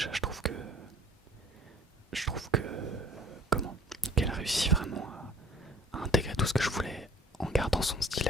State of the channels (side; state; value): both; normal; correlation 0.53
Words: je trouve que comment qu'elle a réussi vraiment à intégrer tout ce que je voulais en gardant son style